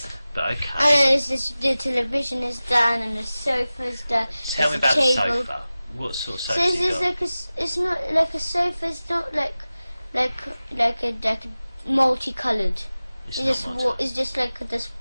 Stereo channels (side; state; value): both; inverted; correlation -0.97